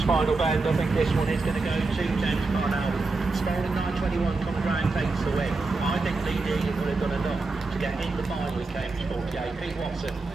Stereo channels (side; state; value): left; quieter; 3.6 dB